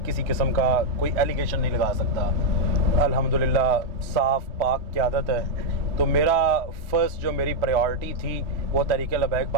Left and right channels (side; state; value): left; late; 3.0 ms